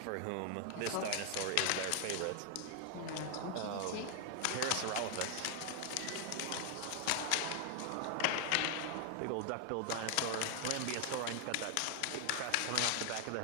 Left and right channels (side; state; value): both; different; correlation 0.00